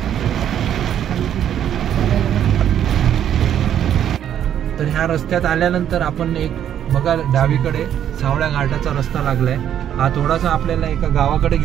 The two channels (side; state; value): left; quieter; 10.0 dB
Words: तर ह्या रस्त्यात आल्यानंतर आपण एक बघा डावीकडे सावळ्या घाटाचा रस्ता लागलाय। हा थोडासा आपल्याला एका गावाकडे